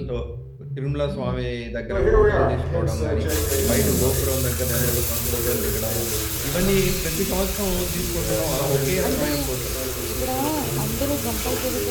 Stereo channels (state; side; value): identical; both; correlation 1.00